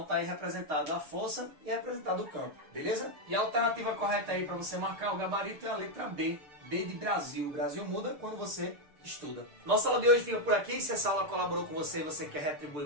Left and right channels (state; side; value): late; left; 6.7 ms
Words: tá aí representado a força e representado o campo, beleza? E a alternativa correta aí para você marcar o gabarito é a letra B. B de Brasil. O Brasil muda quando você estuda. Nossa aula de hoje fica por aqui. Se essa aula colaborou com você e você quer